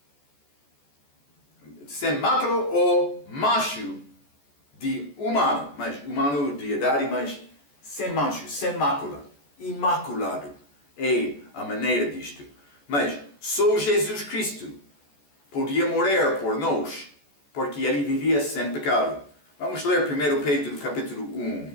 Sem mácula ou macho de humano, mas humano de idade, mas sem mancho, sem mácula, imaculado é a maneira disto. Mas só Jesus Cristo podia morrer por nós, porque ele vivia sem pecado. Vamos ler 1 Pedro capítulo 1.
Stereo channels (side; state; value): right; late; 14 ms